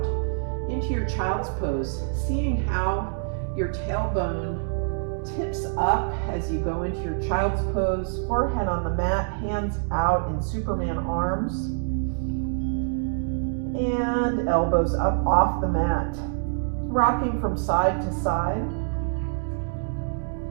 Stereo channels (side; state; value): left; silent; digital silence